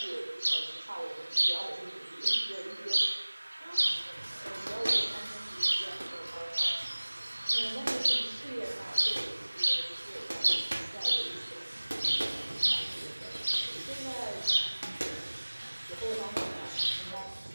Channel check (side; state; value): both; inverted; correlation -1.00